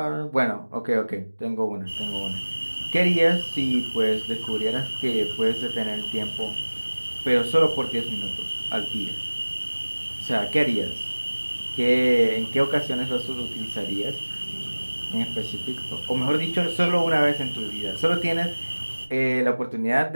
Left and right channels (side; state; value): both; inverted; correlation -1.00